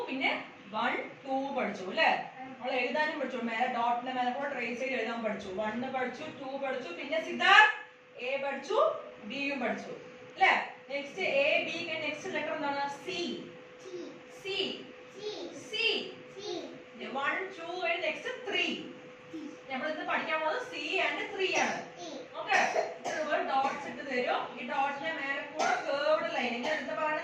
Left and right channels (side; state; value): both; identical; correlation 1.00